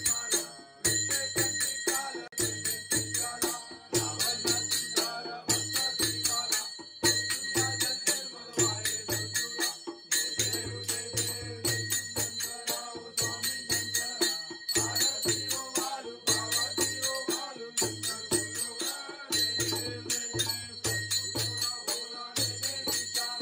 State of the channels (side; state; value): both; identical; correlation 1.00